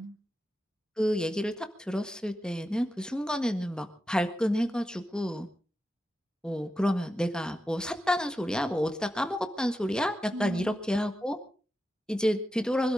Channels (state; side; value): normal; both; correlation 0.90